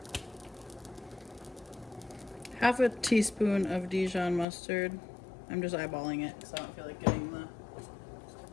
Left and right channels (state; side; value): drops out; right; at 4.5 s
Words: half a teaspoon of Dijon mustard. I'm just eyeballing it because I don't feel like getting the